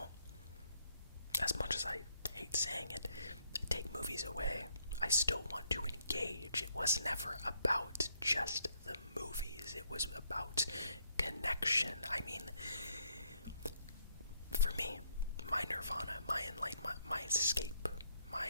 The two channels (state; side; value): inverted; both; correlation -0.72